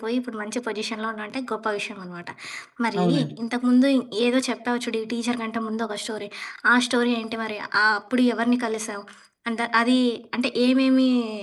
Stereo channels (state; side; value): identical; both; correlation 1.00